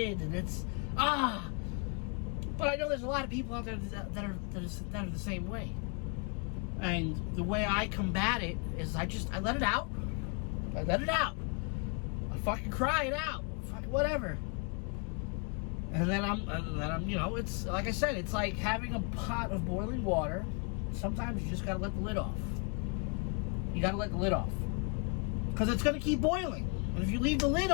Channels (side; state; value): right; quieter; 37.0 dB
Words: and it's, But I know there's a lot of people out there that are the same way. And the way I combat it is I let it out. I let it out. I fucking cry it out. Fucking whatever. And then I'm, you know, it's, like I said, it's like having a pot of boiling water. Sometimes you just gotta let the lid off. You gotta let the lid off. Because it's gonna keep boiling. And if you leave the lid